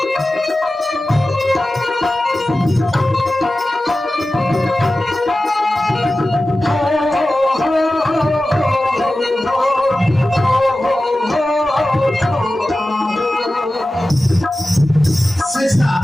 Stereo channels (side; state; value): both; normal; correlation 0.95